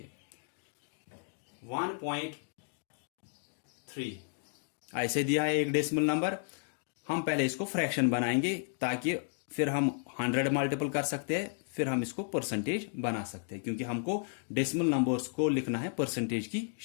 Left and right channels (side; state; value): right; silent; 56 dB below the other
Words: 1.3 ऐसे दिया है एक डेसिमल नंबर। हम पहले इसको फ्रैक्शन बनाएंगे ताकि फिर हम 100 मल्टीपल कर सकते हैं, फिर हम इसको परसेंटेज बना सकते हैं, क्योंकि हमको डेसिमल नंबर्स को लिखना है परसेंटेज की